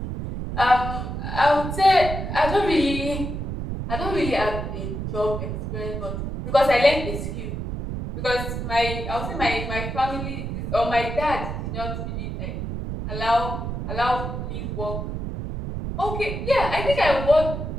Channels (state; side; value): noise; right; rumble, 4 dB below the sound